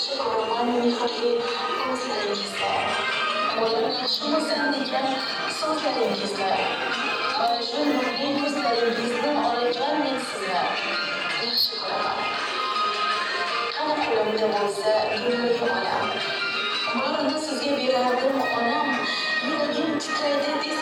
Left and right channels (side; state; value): both; identical; correlation 1.00